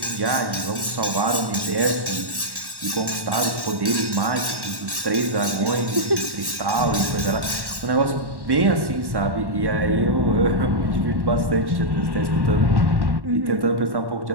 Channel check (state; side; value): late; left; 1.1 ms